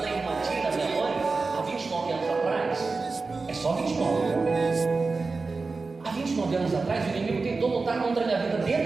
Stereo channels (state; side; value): quieter; left; 4.0 dB